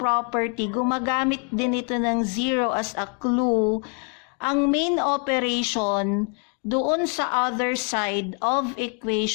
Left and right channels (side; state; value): right; quieter; 39.3 dB